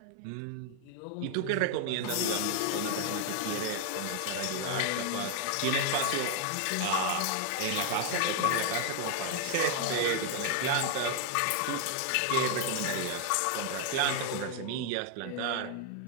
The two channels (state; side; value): different; both; correlation 0.00